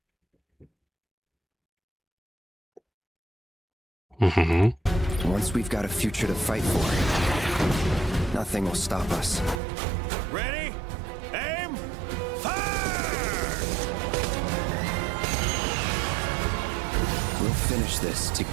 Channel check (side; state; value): left; drops out; at 9.6 s